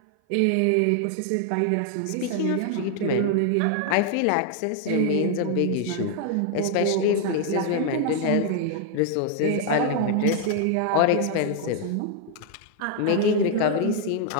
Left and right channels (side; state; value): both; different; correlation 0.00